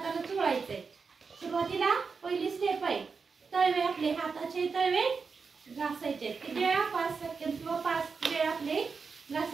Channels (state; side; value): quieter; left; 5.1 dB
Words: चोळायचंय. सुरुवातीला पहिली स्टेप आहे, तळवे आपले हाताचे तळवे घासायचे. किती वेळा, 5 सेकंद किंवा 5 वेळा आपले